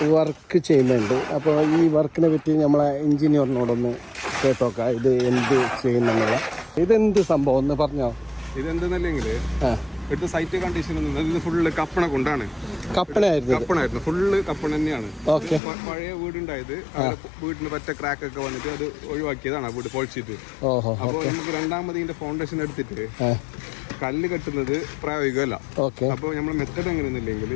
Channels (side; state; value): right; drops out; at 15.6 s